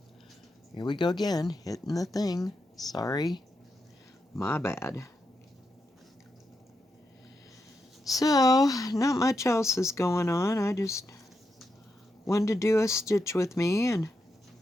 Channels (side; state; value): both; normal; correlation 0.85